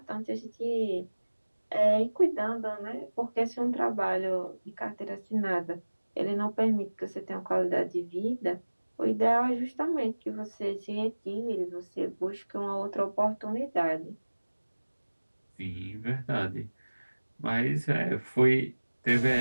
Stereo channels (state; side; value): inverted; both; correlation -1.00